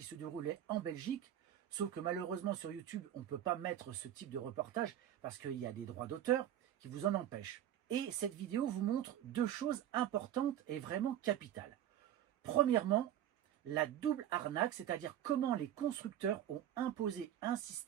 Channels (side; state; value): left; quieter; 11.2 dB